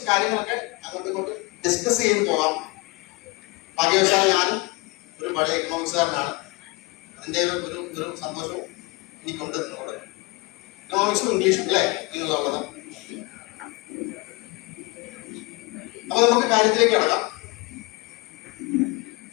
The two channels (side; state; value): right; quieter; 24.7 dB